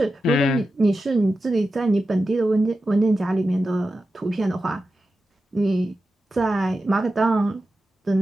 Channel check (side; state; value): both; normal; correlation 0.91